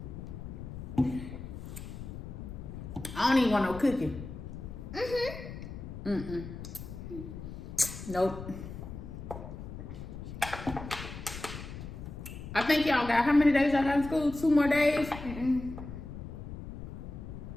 I don't even want no cooking. Nope. I think y'all got, how many days y'all got in school? 2 more days? I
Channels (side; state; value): left; noise; rumble, 10 dB below the sound